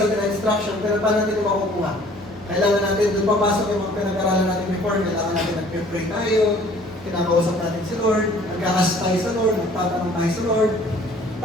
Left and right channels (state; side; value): normal; both; correlation 0.54